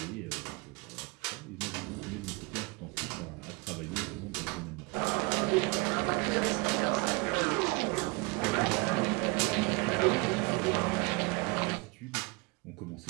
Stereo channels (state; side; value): quieter; left; 28.1 dB